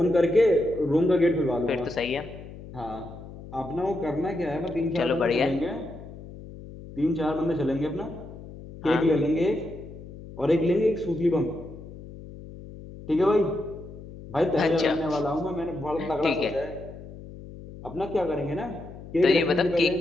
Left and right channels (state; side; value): noise; left; hum, 15 dB below the sound